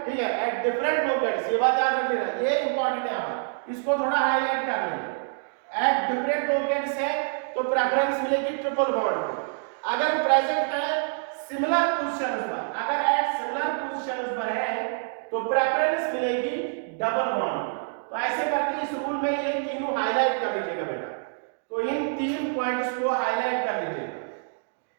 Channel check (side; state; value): left; silent; digital silence